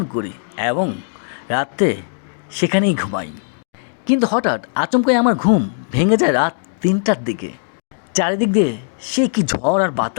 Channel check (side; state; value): right; silent; digital silence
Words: করি এবং রাত্রে সেখানেই ঘুমাই। কিন্তু হঠাৎ আচমকাই আমার ঘুম ভেঙে যায় রাত 3টার দিকে। চারিদিক দিয়ে সে কি ঝড় আর